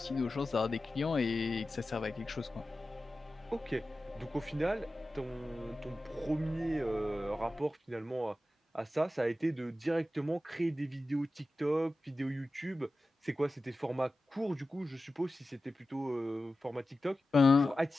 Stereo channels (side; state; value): both; normal; correlation 0.94